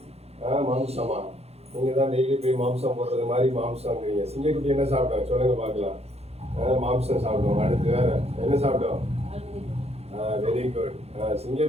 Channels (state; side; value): late; left; 0.30 ms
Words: மாம்சமா? நீங்க தான் டெய்லி போய் மாம்சம் போடுறது மாதிரி மாம்சம்ங்கிறீங்க. சிங்கக்குட்டி என்ன சாப்பிடும் சொல்லுங்க பாக்கலாம். மாம்சம் சாப்பிடும். அடுத்து வேற என்ன சாப்பிடும்? Very good.